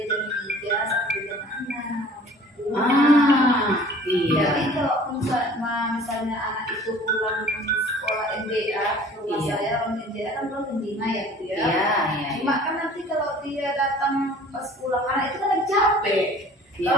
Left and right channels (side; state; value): both; normal; correlation 0.49